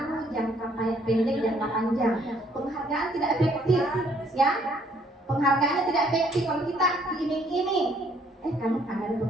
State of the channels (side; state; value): both; normal; correlation 0.64